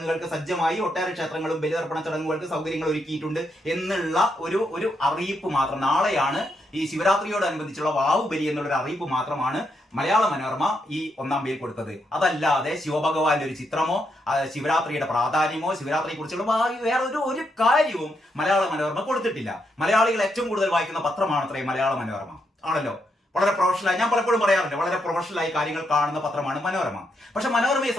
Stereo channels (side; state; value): both; normal; correlation 0.80